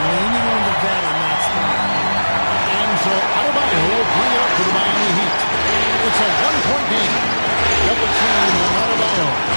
leaning on the vet in that spot. And so Adebayo will bring it up to the Miami Heat. It's a one-point game. Double team on Adebayo.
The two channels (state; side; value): inverted; both; correlation -1.00